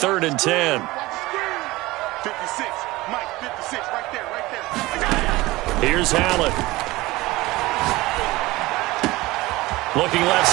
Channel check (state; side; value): quieter; left; 19.8 dB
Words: and 10. 56, Mike, 56, right there. Here's Allen. Looking left